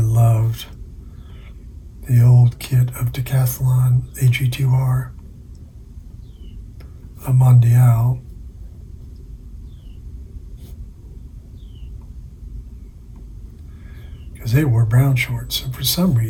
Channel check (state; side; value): identical; both; correlation 1.00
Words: loved the old kit of Decathlon AG2R, a Mondial. Because they wore brown shorts, and for some